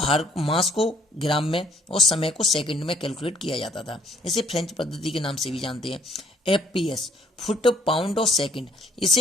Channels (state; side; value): normal; both; correlation 0.64